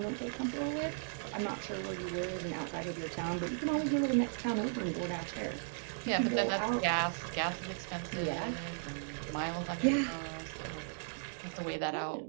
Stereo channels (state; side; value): silent; left; digital silence